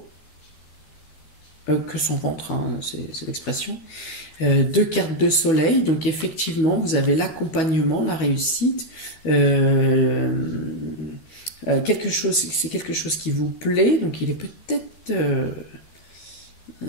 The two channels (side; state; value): right; late; 13 ms